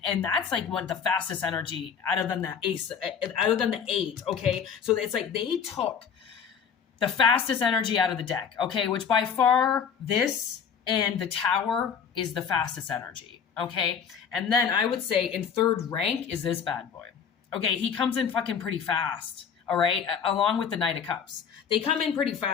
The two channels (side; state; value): right; quieter; 7.1 dB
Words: and that's like one of the fastest energy other than the Ace, other than the 8. Okay, so it's like they took the fastest energy out of the deck. Okay, which by far this and the Tower is the fastest energy. Okay, and then I would say in third rank is this bad boy. Okay, he comes in fucking pretty fast. All right, along with the Knight of Cups. They come in pretty